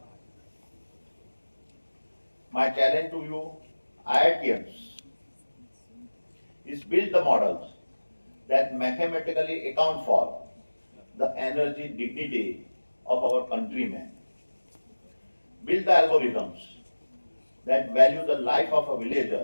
My challenge to you, IITians, is build the models that mathematically account for the energy dignity of our countrymen. Build the algorithms that value the life of a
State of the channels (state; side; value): inverted; both; correlation -1.00